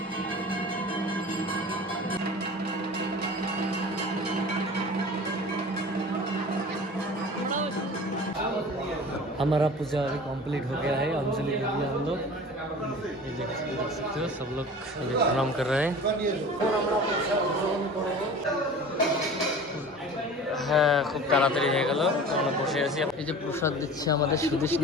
हमारा पूजा अभी कंप्लीट हो गया है। अंजलि दे दिया हम लोग। ये देख सकते हो, सब लोग अभी प्रणाम कर रहे हैं। হ্যাঁ, খুব তাড়াতাড়ি হয়ে গেল। আমরা বসে আছি। এই যে প্রসাদ দিচ্ছে আমাদের সুদেশ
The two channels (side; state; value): both; normal; correlation 0.39